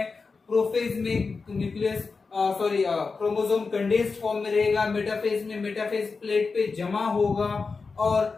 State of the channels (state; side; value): quieter; right; 4.5 dB